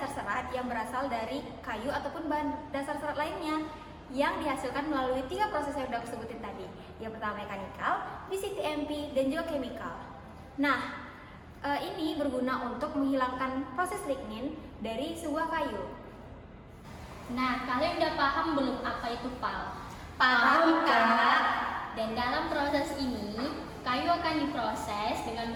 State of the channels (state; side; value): identical; both; correlation 1.00